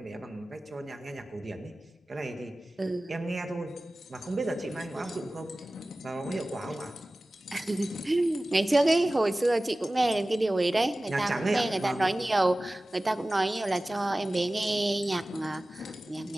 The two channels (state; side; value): normal; both; correlation 0.97